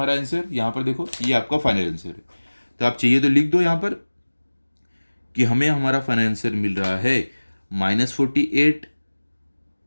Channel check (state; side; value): inverted; both; correlation -1.00